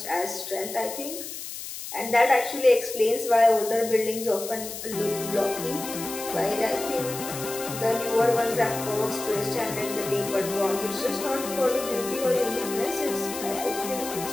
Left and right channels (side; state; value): left; noise; hiss, 9 dB below the sound